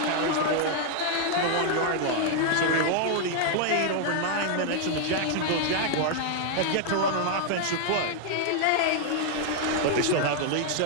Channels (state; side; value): different; both; correlation 0.00